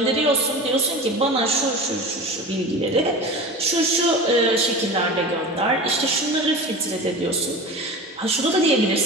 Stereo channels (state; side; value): normal; both; correlation 0.32